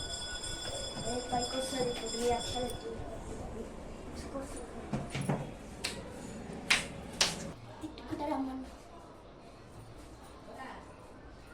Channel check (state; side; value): identical; both; correlation 1.00